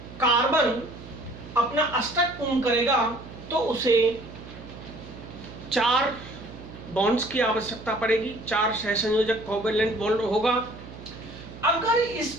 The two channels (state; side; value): noise; right; hum, 15 dB below the sound